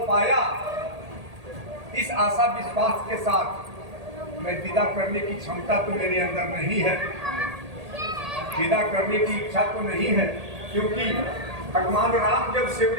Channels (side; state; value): left; late; 1.8 ms